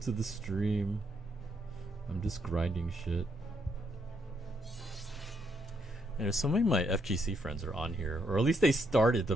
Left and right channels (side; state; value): both; normal; correlation 0.75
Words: to the stream. I'm just grinding shit. And so many of my FGC friends are on here, or at least they started to